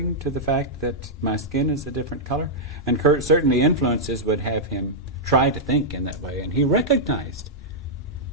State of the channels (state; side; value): normal; both; correlation -0.08